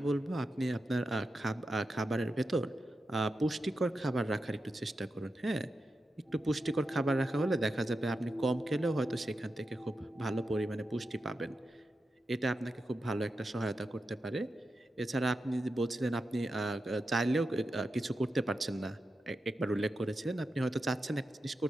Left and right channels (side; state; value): both; normal; correlation 0.89